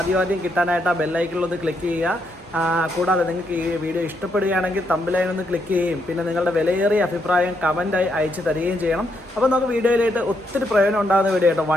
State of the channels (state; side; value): normal; both; correlation 0.77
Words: കിട്ടാനായിട്ട് ആ ബെല്ലൈക്കണിലൊന്ന് ക്ലിക്ക് ചെയ്യുക. കൂടാതെ നിങ്ങൾക്ക് ഈ വീഡിയോ ഇഷ്ടപ്പെടുകയാണെങ്കിൽ തമ്പിലൈൻ ഒന്ന് ക്ലിക്ക് ചെയ്യുകയും പിന്നെ നിങ്ങളുടെ വിലയേറിയ അഭിപ്രായം കമൻറ്റായി അയച്ചു തരികയും ചെയ്യണം. അപ്പോൾ നമുക്ക് വീഡിയോയിലായിട്ട് ഒത്തിരി പ്രയോജനം ഉണ്ടാകുന്ന വീഡിയോ കേട്ടോ.